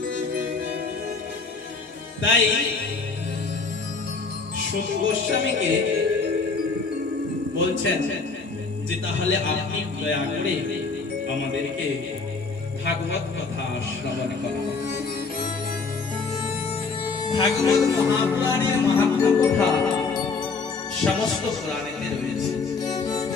তাই সুত গোস্বামীকে বলছেন যে তাহলে আপনি দয়া করে আমাদেরকে ভাগবত কথা শ্রবণ করুন। ভাগবত মহাপুরাণের মাহাত্ম্য কথা সমস্ত পুরাণেতে রয়েছে।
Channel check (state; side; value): quieter; right; 4.4 dB